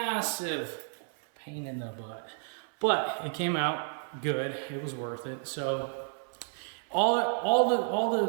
pain in the butt, but it came out good. It was worth it. So all the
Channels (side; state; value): left; silent; 57 dB below the other